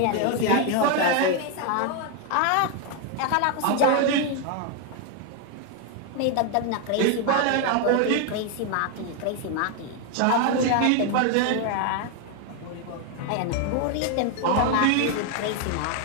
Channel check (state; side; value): different; both; correlation 0.01